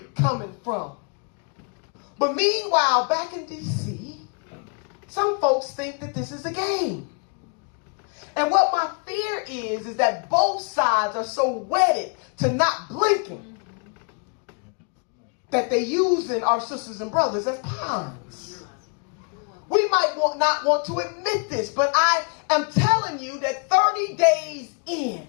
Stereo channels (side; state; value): right; quieter; 37.3 dB